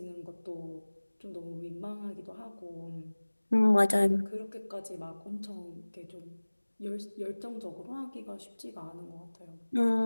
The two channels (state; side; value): inverted; both; correlation -1.00